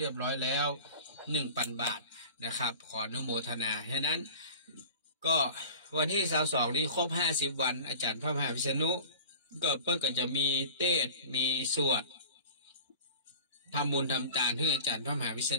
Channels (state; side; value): inverted; both; correlation -0.41